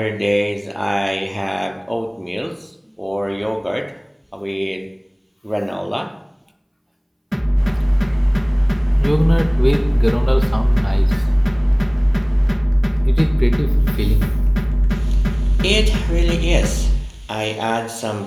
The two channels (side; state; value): both; identical; correlation 1.00